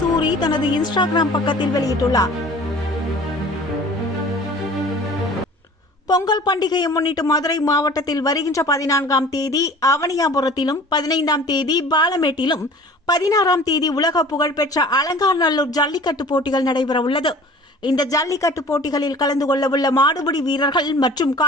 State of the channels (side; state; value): both; normal; correlation 0.45